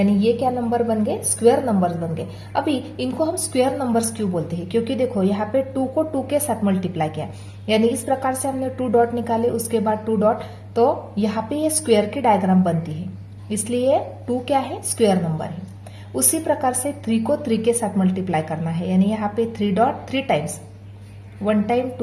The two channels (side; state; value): both; identical; correlation 1.00